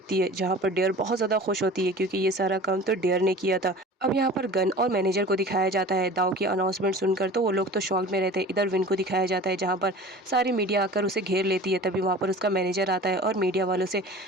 है, जहाँ पर डेयर बहुत ज़्यादा खुश होती है क्योंकि ये सारा काम तो डेयर ने किया था। अब यहाँ पर गन और मैनेजर को दिखाया जाता है दाऊ की अनाउंसमेंट सुनकर, तो वो लोग तो शॉक में रहते हैं। इधर विन को दिखाया जाता है जहाँ पर सारी मीडिया आकर उसे घेर लेती है, तभी वहाँ पर उसका मैनेजर आता है और मीडिया वालों से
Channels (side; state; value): both; normal; correlation 0.40